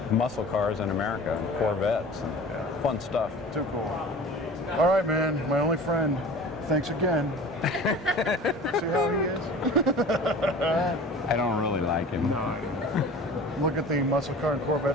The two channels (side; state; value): both; normal; correlation 0.40